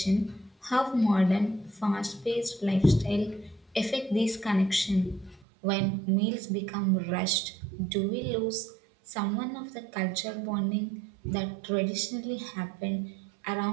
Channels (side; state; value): left; drops out; at 5.5 s